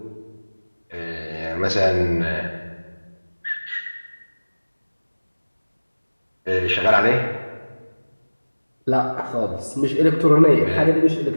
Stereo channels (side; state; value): both; inverted; correlation -1.00